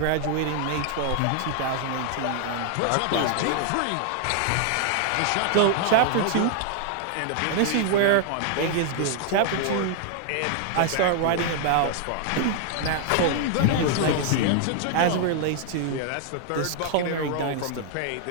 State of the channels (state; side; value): different; both; correlation 0.00